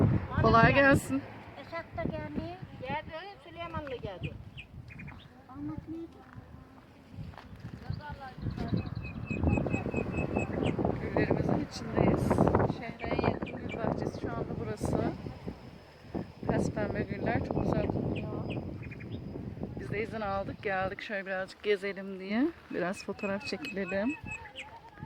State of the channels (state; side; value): identical; both; correlation 1.00